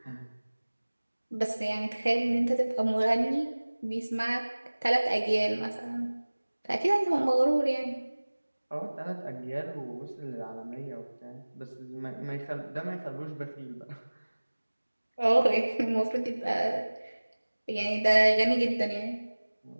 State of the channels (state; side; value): inverted; both; correlation -1.00